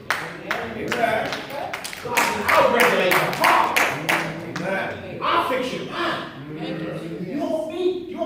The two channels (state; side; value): identical; both; correlation 1.00